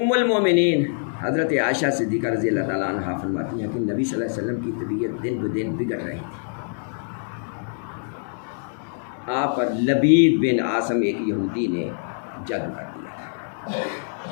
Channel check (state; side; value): silent; right; 58 dB below the other